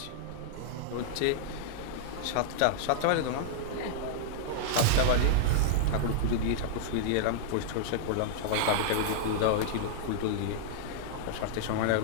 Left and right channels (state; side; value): different; both; correlation -0.02